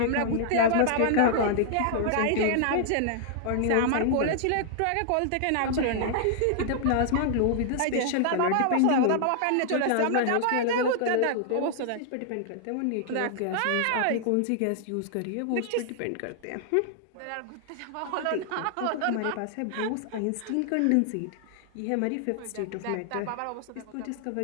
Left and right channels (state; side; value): different; both; correlation -0.01